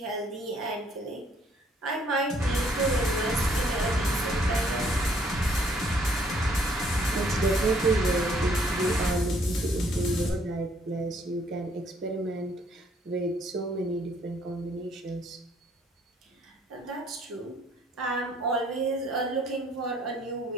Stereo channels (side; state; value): both; normal; correlation 0.64